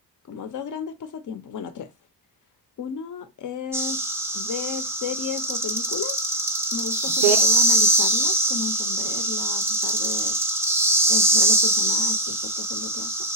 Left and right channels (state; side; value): normal; both; correlation -0.07